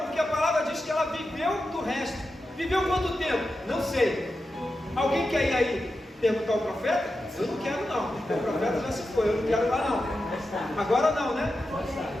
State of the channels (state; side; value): normal; both; correlation 0.90